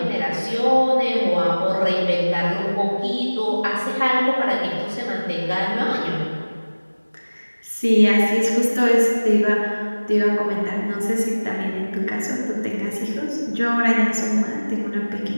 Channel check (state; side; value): inverted; both; correlation -1.00